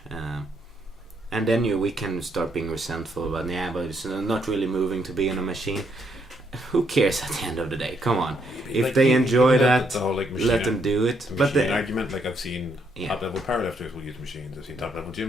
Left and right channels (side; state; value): both; normal; correlation 0.74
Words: And then we can start being resentful about, but it's not really moving to be in a machine. Who cares at the end of the day? Come on, if like, they enjoy that, the whole, like, let them do it. But the argument, like, I've seen top level powerlifters will use machines. I've seen top level